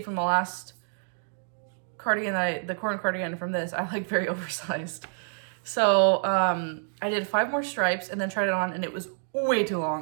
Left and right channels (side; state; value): left; silent; digital silence